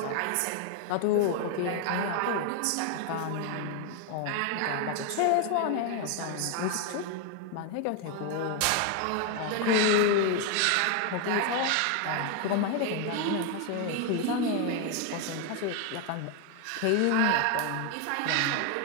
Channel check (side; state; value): both; different; correlation 0.01